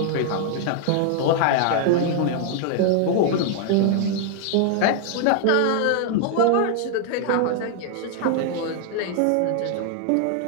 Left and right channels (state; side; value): different; both; correlation 0.00